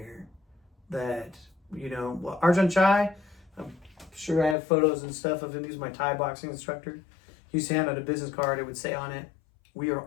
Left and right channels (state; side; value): drops out; right; at 4.5 s